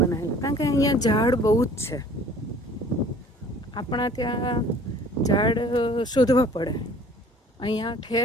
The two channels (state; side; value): normal; both; correlation 0.51